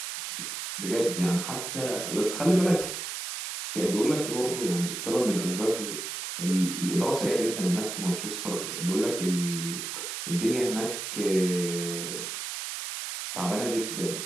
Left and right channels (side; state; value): right; noise; hiss, 5 dB below the sound